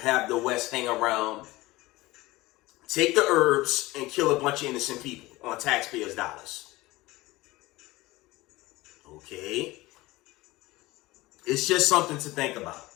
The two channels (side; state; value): right; quieter; 19.8 dB